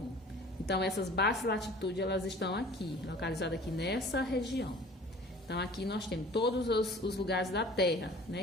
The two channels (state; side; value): normal; both; correlation 0.47